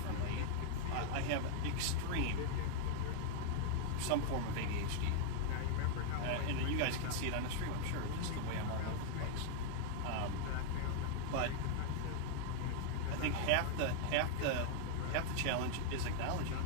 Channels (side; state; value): both; different; correlation 0.00